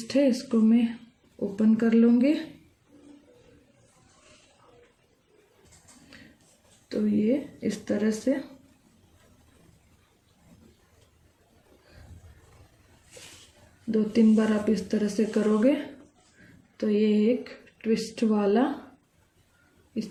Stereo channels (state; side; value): identical; both; correlation 1.00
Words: है इसको मैं ओपन कर लूँगी। तो ये इस तरह से दो तीन बार आप इस तरह से करोगे तो ये एक ट्विस्ट वाला